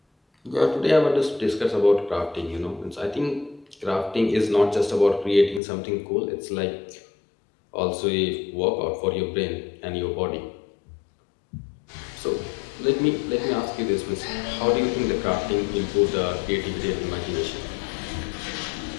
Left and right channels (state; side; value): drops out; right; at 5.6 s